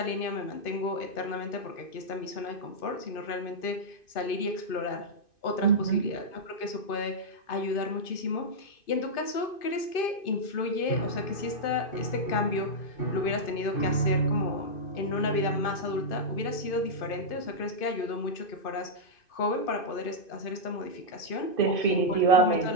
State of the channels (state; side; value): late; right; 2.5 ms